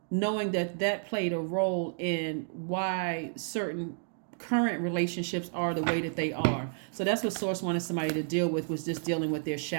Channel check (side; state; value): left; silent; digital silence